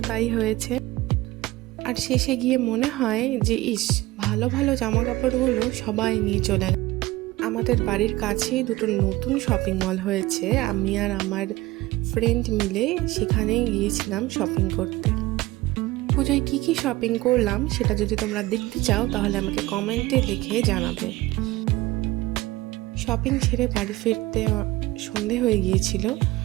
তাই হয়েছে। আর শেষে গিয়ে মনে হয় যে ভালো ভালো জামা কাপড়গুলো সবাই নিয়ে চলে গেল। আমাদের বাড়ির কাছেই দুটো নতুন শপিং মল হয়েছে, আমি আর আমার ফ্রেন্ড মিলে সেখানে গিয়েছিলাম শপিং করতে। পুজোয় কী কী শপিং করলাম সেটা যদি তোমরা দেখতে চাও তাহলে আমাকে কমেন্টে লিখে জানাবে। শপিং ছেড়ে বাড়ি ফিরতে সন্ধে হয়ে গিয়েছিল।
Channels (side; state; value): left; quieter; 18.7 dB